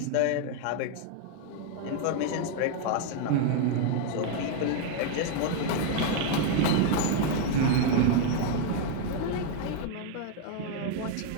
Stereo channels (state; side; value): different; both; correlation 0.00